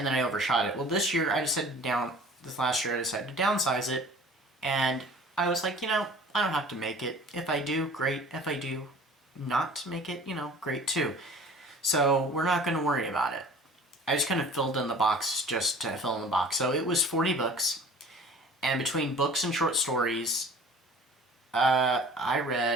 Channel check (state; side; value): normal; both; correlation 0.46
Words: then I overshot it. Well, this year, this last year, I decided to downsize it, and I was like, I don't have to make it. If I do, great. If I do not make it, great too. So we're not going to worry about it. I just kind of filled in the box just to fill in the box. So it was 40 books, and between books and short stories, I